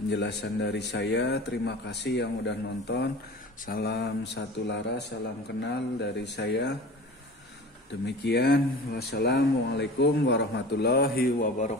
dari saya. Terima kasih yang udah nonton. Salam satu laras, salam kenal dari saya. Demikian, wassalamualaikum warahmatullahi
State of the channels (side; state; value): both; normal; correlation 0.38